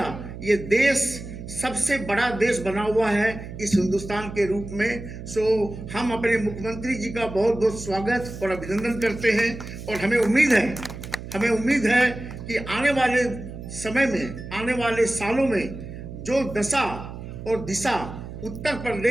ये देश सबसे बड़ा देश बना हुआ है इस हिंदुस्तान के रूप में। सो हम अपने मुख्यमंत्री जी का बहुत बहुत स्वागत और अभिनंदन करते हैं और हमें उम्मीद है कि आने वाले समय में, आने वाले सालों में जो दशा और दिशा उत्तर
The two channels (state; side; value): noise; right; hum, 11 dB below the sound